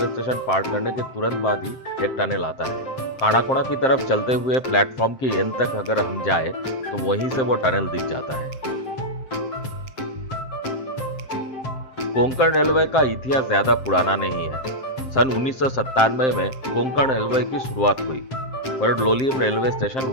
स्टेशन पार करने के तुरंत बाद ही एक टनल आता है। कानाकोना की तरफ चलते हुए प्लेटफॉर्म की एंड तक अगर हम जाए तो वहीं से वो टनल दिख जाता है। कोंकण रेलवे का इतिहास ज्यादा पुराना नहीं है। सन 1997 में कोंकण रेलवे की शुरुआत हुई, पर लोलियम रेलवे स्टेशन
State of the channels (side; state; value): right; late; 7.6 ms